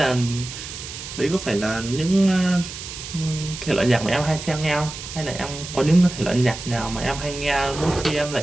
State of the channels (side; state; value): right; noise; hiss, 10 dB below the sound